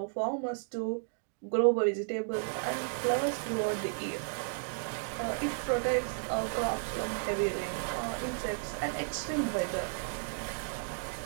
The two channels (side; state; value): left; silent; digital silence